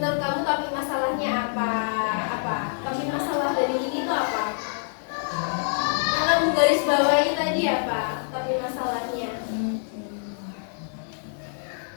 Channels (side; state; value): right; silent; digital silence